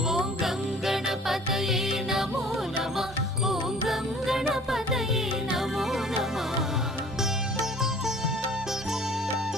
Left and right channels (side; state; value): both; normal; correlation 0.50